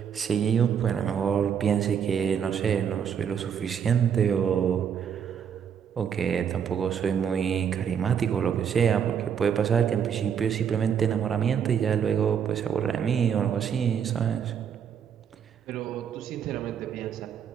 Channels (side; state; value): left; quieter; 7.9 dB